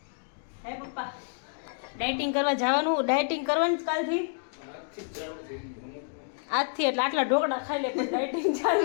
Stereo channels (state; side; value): silent; right; digital silence